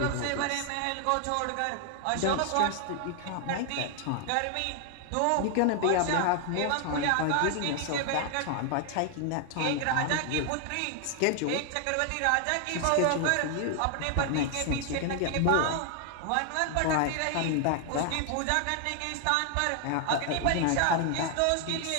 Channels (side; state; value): both; different; correlation 0.00